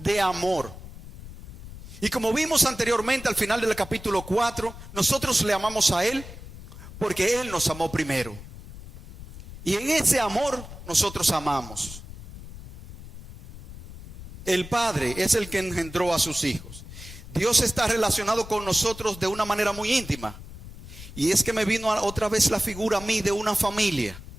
de amor. Y como vimos anteriormente al final del capítulo 4, nosotros le amamos a Él porque Él nos amó primero. Y en ese amor nosotros amamos. El Padre es el que engendró a sus hijos. Dios está relacionado con nosotros de una manera muy íntima. Y es que me vino otra vez la figura a mí de una familia.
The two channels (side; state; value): left; noise; rumble, 14 dB below the sound